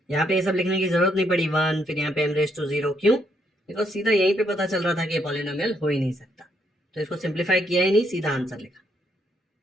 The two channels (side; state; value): both; normal; correlation 0.74